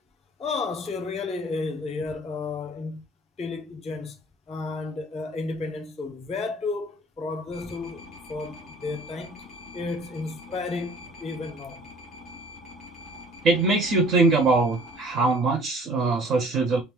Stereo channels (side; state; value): both; normal; correlation 0.52